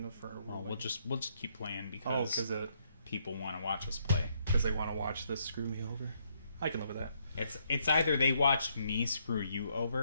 for. Well, we'll just keep playing because people want to watch us play. Because they want to watch this screw me over. I can live with that. It's either they watch me screw you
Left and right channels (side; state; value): both; inverted; correlation -0.73